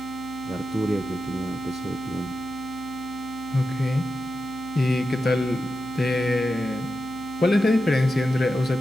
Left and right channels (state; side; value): noise; right; hum, 19 dB below the sound